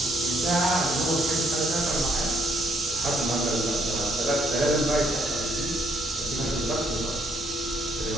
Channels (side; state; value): both; normal; correlation 0.70